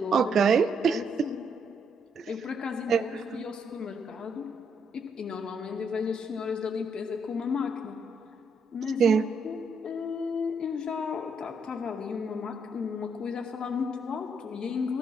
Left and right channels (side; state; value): both; normal; correlation 0.75